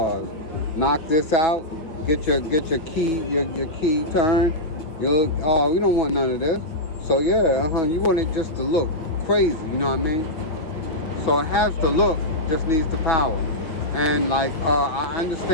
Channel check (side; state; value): right; late; 6.1 ms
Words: Knock this out, get your key turned. We don't want none of this. So yeah, you want it just to look crazy, you know what I mean? So it has the look, just needs the power. And like I